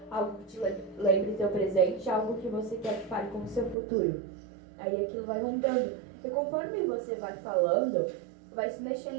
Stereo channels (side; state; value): left; drops out; at 3.8 s